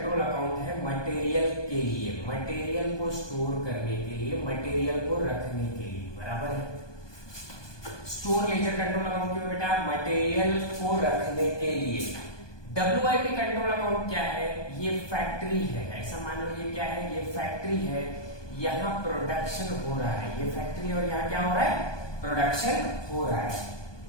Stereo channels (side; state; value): right; late; 1.2 ms